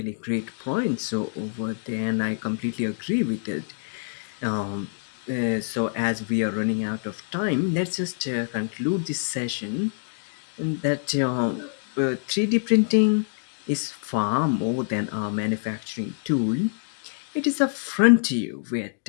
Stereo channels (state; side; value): silent; right; digital silence